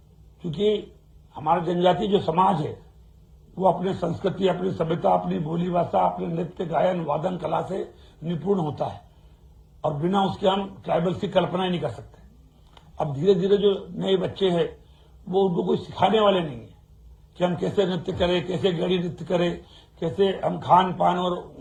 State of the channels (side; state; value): both; identical; correlation 1.00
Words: क्योंकि हमारा जनजाति जो समाज है वो अपने संस्कृति, अपनी सभ्यता, अपनी बोली भाषा, अपने नृत्य, गायन, वादन कला से निपुण होता है और बिना उसके हम ट्राइबल्स की कल्पना ही नहीं कर सकते। अब धीरे धीरे जो नए बच्चे हैं वो उनको कोई सिखाने वाले नहीं है कि हम कैसे नृत्य करें, कैसे गड़ी नृत्य करें, कैसे हम खान पान और